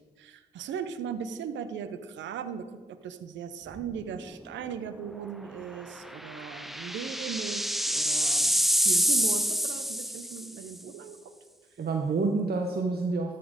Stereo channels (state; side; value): normal; both; correlation 0.72